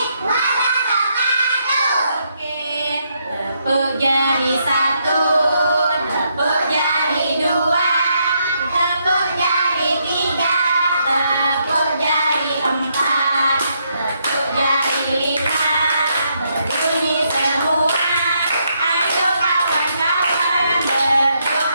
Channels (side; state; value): both; inverted; correlation -0.77